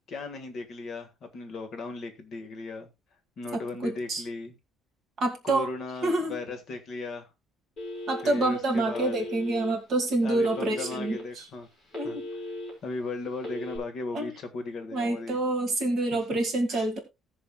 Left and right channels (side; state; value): both; normal; correlation 0.68